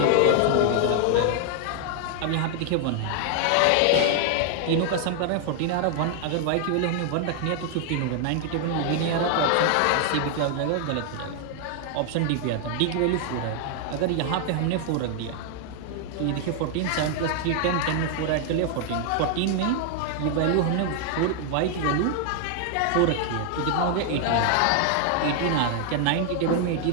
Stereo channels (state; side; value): different; both; correlation 0.00